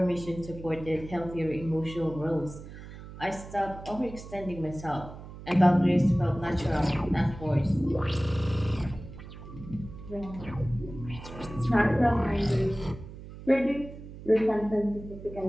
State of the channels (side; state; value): right; noise; hum, 14 dB below the sound